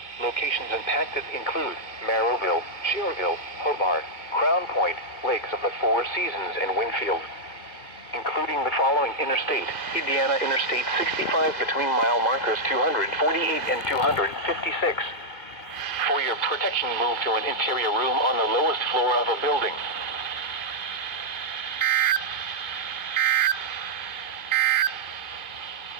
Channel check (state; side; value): late; right; 2.5 ms